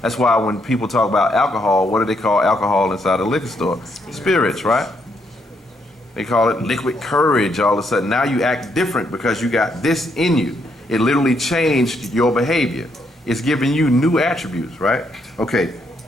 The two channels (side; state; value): both; normal; correlation 0.75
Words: That's why when people talk about alcohol, what do they call alcohol inside a liquor store? Spirits, right? They call it liquid courage all of a sudden. Now you act different because you got this in you. It literally changed your behavior. It's giving you new attributes, right? Okay.